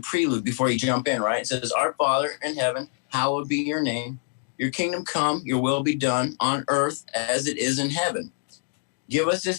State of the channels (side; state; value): right; silent; digital silence